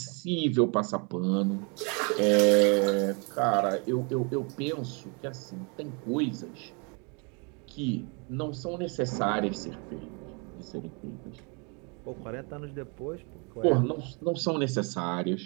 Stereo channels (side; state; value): left; quieter; 33.5 dB